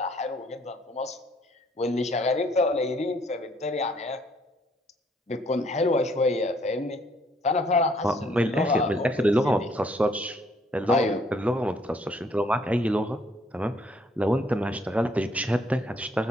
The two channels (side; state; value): both; normal; correlation 0.65